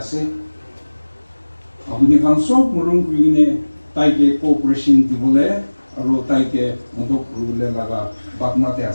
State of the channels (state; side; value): inverted; both; correlation -1.00